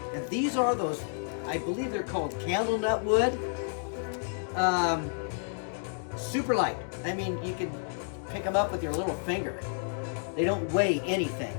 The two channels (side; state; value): right; silent; 57 dB below the other